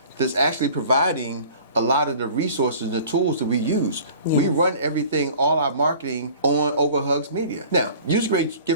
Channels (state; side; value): inverted; both; correlation -0.46